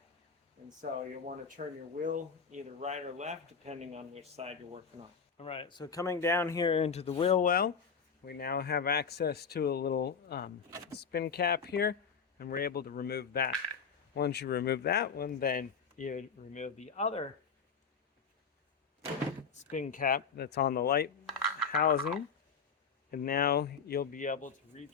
And so you'll want to turn your wheel either right or left depending on which side you're working on. Alright, so coming down here into the wheel well, we now have access to a little spin cap here, and we're able to remove that. Once you remove that one, then you remove the other spin cap that's on the light housing, and now you'll be able to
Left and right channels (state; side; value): quieter; right; 6.0 dB